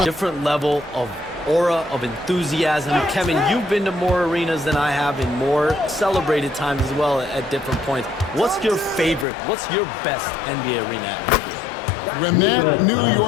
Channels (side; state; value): right; drops out; at 9.2 s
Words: Different level of aura, of enthusiasm. Kevin, you've been to more arenas than I have in more celebrated times as well at different points. What's your favorite, what's your best NBA arena atmosphere? when that New